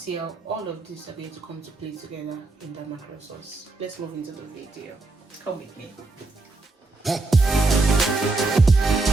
how all of these are going to come to play together in the mackerel sauce. Let's move into the video. Come with me.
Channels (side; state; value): left; quieter; 3.4 dB